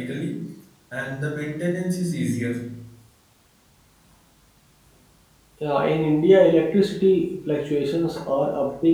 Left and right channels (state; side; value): identical; both; correlation 1.00